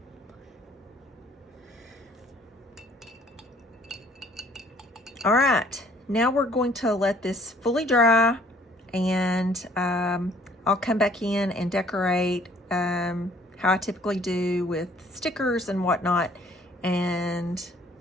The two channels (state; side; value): normal; both; correlation 0.58